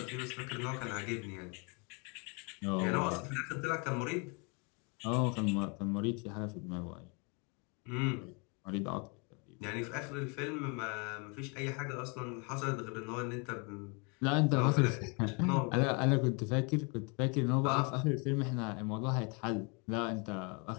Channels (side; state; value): right; quieter; 33.1 dB